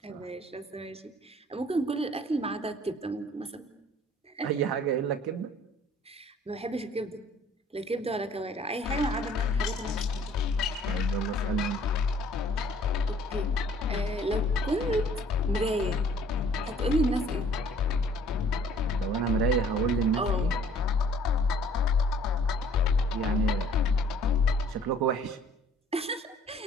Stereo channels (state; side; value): normal; both; correlation 0.57